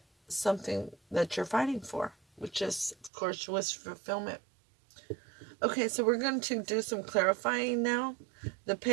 something that you're fighting for, which is, of course, wish fulfillment. Okay, so we're going to do some clarifying now. The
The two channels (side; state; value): left; drops out; at 3.1 s